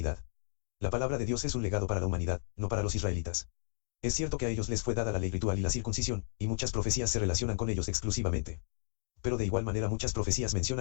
La palabra de Dios es un legado para la humanidad, no para los israelitas. Es cierto que a ellos les fue dada la ley ritual y la circuncisión, y muchas profecías se relacionan con ellos exclusivamente. Pero de igual manera muchas profecías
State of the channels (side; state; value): right; silent; digital silence